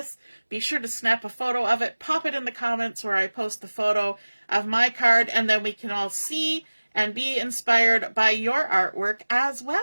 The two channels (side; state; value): both; inverted; correlation -1.00